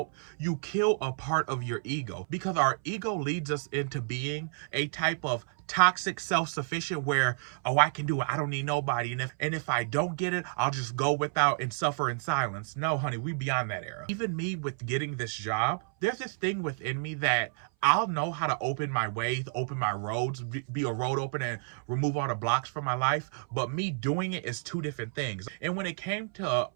you kill a part of your ego, because our ego leads us into being a type of toxic self-sufficient where, oh, I can do it, I don't need nobody, and if I don't get it, I'll just go without and suffer in silence. No, honey, we beyond that era. Even me with getting this job, there's this thing within me that I'll know how to open my ways, open my roads, be a road opener and remove all the blocks from my life, but me doing it is two different things. And when it came to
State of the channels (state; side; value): silent; left; 58 dB below the other